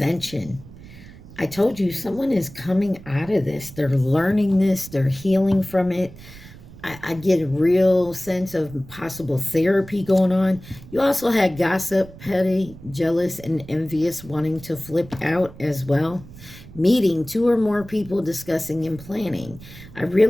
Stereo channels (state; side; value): noise; right; rumble, 18 dB below the sound